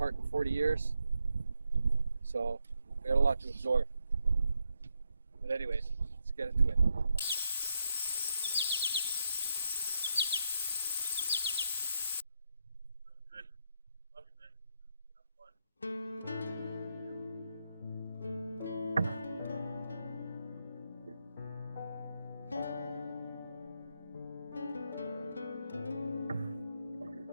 in 40 years, so I got a lot to absorb. But anyways, let's get into it.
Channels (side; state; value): both; inverted; correlation -0.82